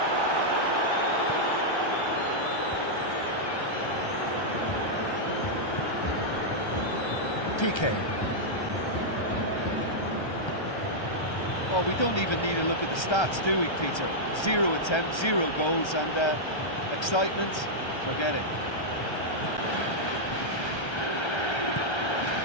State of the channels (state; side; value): late; right; 1.3 ms